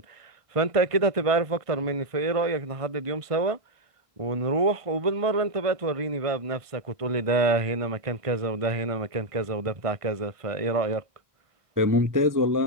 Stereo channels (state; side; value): late; left; 1.5 ms